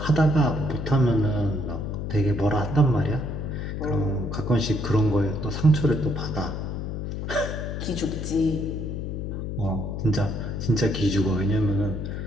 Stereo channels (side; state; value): left; noise; hum, 4 dB below the sound